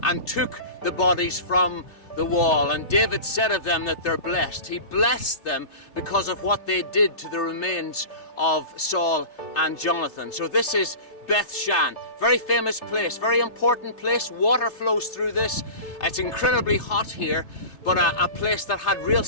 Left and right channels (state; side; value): late; right; 3.3 ms